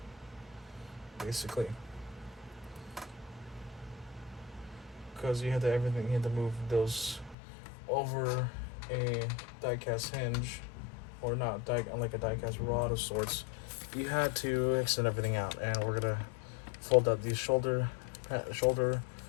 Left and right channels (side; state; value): right; drops out; at 7.4 s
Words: basically, because you had to move those over a die-cast hinge, or not like a die-cast rod of sorts. You had to extend everything out, and we're gonna fold out these shoulder